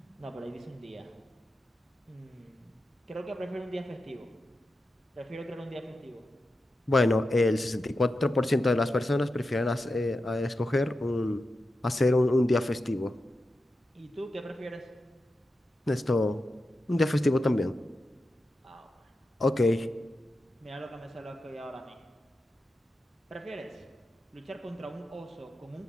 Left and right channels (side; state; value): both; normal; correlation 0.90